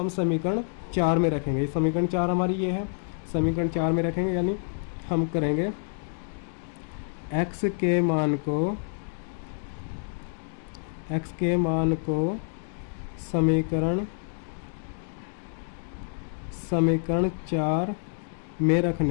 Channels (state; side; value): silent; right; digital silence